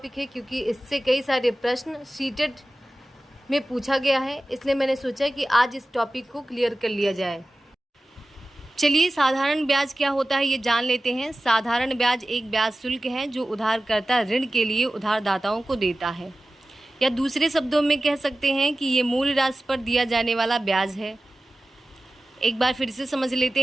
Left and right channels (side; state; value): both; normal; correlation 0.95